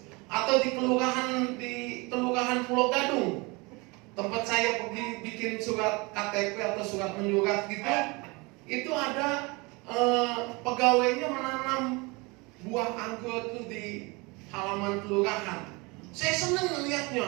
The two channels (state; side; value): quieter; left; 26.5 dB